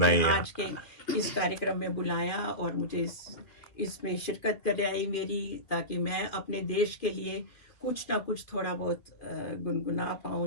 आज के इस कार्यक्रम में बुलाया और मुझे इसमें शिरकत कराई मेरी, ताकि मैं अपने देश के लिए कुछ ना कुछ थोड़ा बहुत गुनगुना पाऊं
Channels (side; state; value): right; late; 2.8 ms